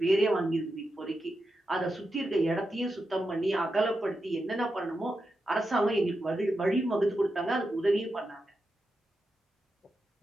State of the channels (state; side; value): normal; both; correlation 0.88